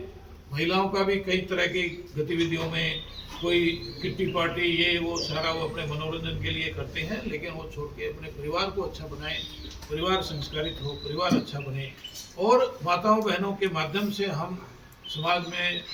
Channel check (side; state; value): both; identical; correlation 1.00